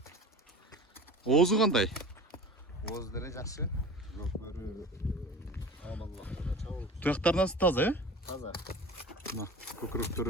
Оозу кандай? Ооз деле жакшы. Көкбөрү амаллыкта чабыл. Туяктарынан таза, Таза. Мына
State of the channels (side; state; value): both; normal; correlation 0.37